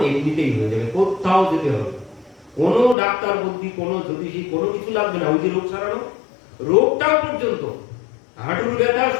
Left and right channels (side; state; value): right; drops out; at 3.0 s